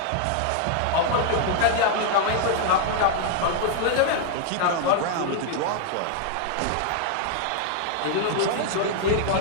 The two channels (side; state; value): both; different; correlation 0.00